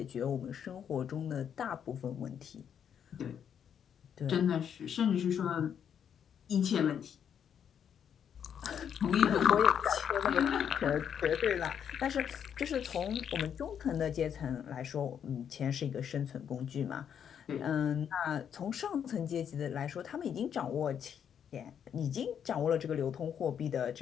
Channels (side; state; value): right; quieter; 8.4 dB